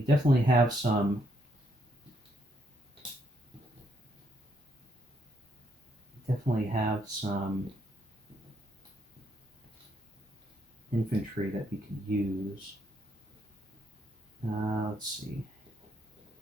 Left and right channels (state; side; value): normal; both; correlation 0.74